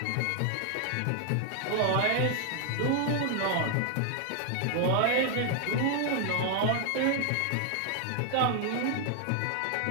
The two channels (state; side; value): different; both; correlation 0.00